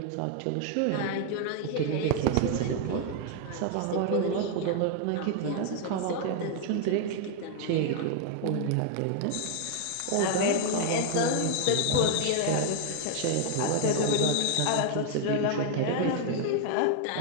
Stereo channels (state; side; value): different; both; correlation 0.00